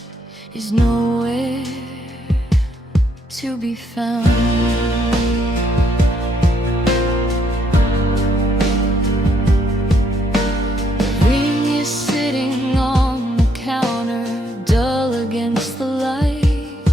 is nowhere to be found. The ring is sitting on the counter, dull against the light.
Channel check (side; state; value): both; normal; correlation 0.72